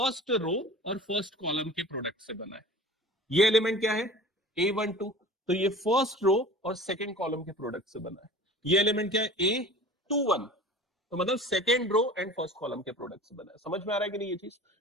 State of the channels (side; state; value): both; normal; correlation 0.40